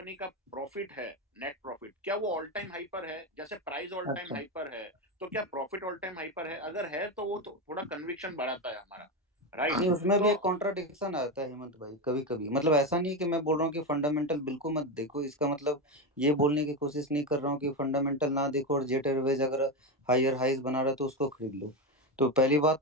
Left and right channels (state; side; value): normal; both; correlation 0.14